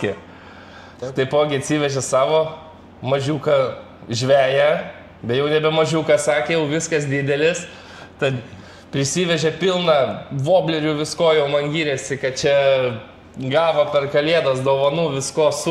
Taipogi atsivežė savo mažiuką žveją, be jau nebe mažiuką, sakė, jau viskas didelis. Tad prisivežė pilną voblerių, visko jau man gyrėsi, kad čia gavo per kalėdas dovanų, visko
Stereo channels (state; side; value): identical; both; correlation 1.00